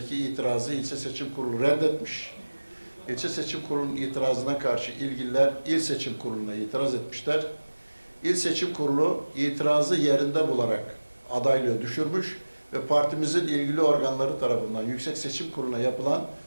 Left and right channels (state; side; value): inverted; both; correlation -1.00